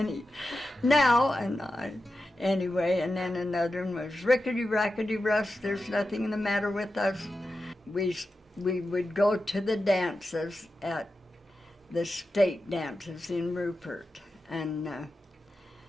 Anyway, and then another one was rickety, rackety, Russ, there's nothing the matter with us. We would go to the dances at the state dances in Rupert, and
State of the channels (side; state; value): both; normal; correlation 0.91